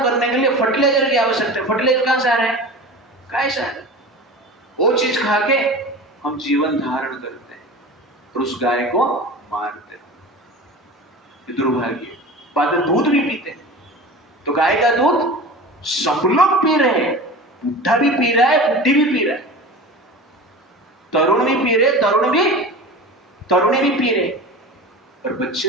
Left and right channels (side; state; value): both; normal; correlation 0.33